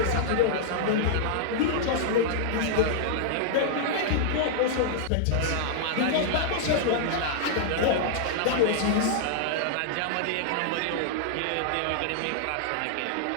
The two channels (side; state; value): both; different; correlation -0.01